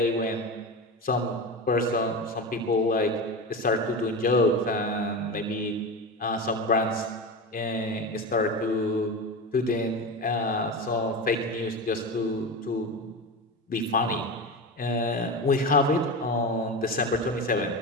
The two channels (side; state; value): both; normal; correlation 0.23